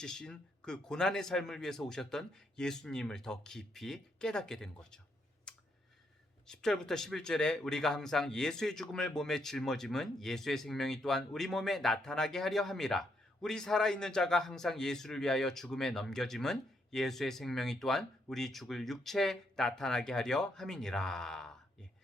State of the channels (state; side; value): normal; both; correlation 0.76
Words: 그 고난의 삶을 위해서 오셨던 예수님을 더 깊이 깨닫게 된 거죠. 10절부터 11절에 우리가 항상 예수의 죽음을 몸에 짊어짐은 예수의 생명이 또한 우리 몸에 나타나게 하려 함이라. 우리 살아있는 자가 항상 예수를 위하여 죽음에 넘겨짐은 예수의 생명이 또한 우리 죽을 육체에 나타나게 하려 함이니라.